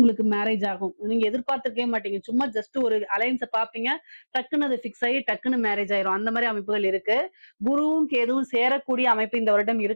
மேரேஜ் ஆகும். நீங்க எதிர்பார்த்திருக்கவே மாட்டீங்க. சும்மா ஜஸ்ட் ஒரு அலைன்ஸை பாப்பீங்க, டக்குன்னு அது ஃபிக்ஸ் ஆகி டக்குன்னு மேரேஜ் ஆயிரும். அந்த மாதிரி அமைப்புகள் இருக்கு. குருவும் கேதுவும் சேரக்கூடிய அமைப்பு இந்த வருடம்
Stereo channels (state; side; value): inverted; both; correlation -1.00